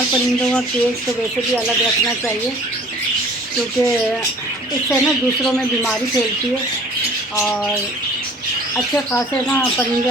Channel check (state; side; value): normal; both; correlation 0.50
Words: परिंदों का केज तो वैसे भी अलग रखना चाहिए, क्योंकि इससे ना दूसरों में बीमारी फैलती है और अच्छे खासे ना परिंदे